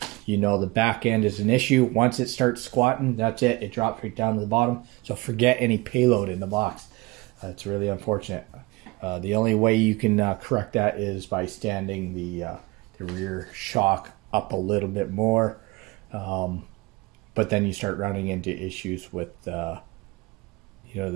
the back end is an issue. Once it starts squatting, that's it. It drops right down to the bottom. So forget any payload in the box. It's really unfortunate. The only way you can correct that is by standing the rear shock up a little bit more. But then you start running into issues with the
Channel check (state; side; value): quieter; left; 23.5 dB